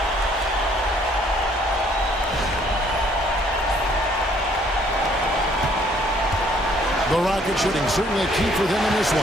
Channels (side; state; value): both; normal; correlation 0.63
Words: The Rocket shooting certainly a key for them in this